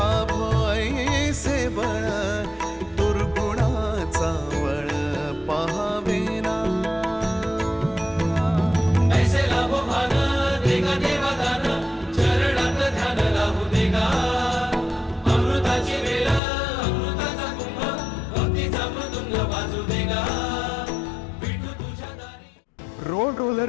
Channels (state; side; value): drops out; right; at 16.4 s